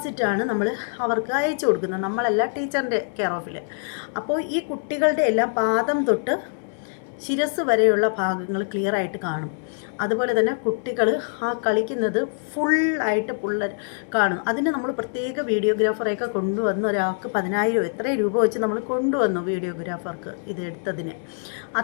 നമ്മൾ അവർക്ക് അയച്ചു കൊടുക്കുന്നത്. നമ്മളല്ല, ടീച്ചറിൻ്റെ കെയർ ഓഫിൽ. അപ്പോൾ ഈ കുട്ടികളുടെ എല്ലാം പാദം തൊട്ട് ശിരസ് വരെയുള്ള ഭാഗങ്ങൾ ക്ലിയറായിട്ട് കാണും. അതുപോലെ തന്നെ കുട്ടികൾ ആ കളിക്കുന്നത് ഫുള്ളായിട്ട് കാണും. അതിന് നമ്മൾ പ്രത്യേക വീഡിയോഗ്രാഫറെയൊക്കെ കൊണ്ടുവന്ന് ഒരാൾക്ക് 10,000 എത്രയും രൂപ വെച്ച് നമ്മൾ കൊണ്ടുവന്നു വീഡിയോഗ്രാഫർക്ക് ഇത് എടുത്തതിന്.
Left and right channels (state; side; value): silent; right; digital silence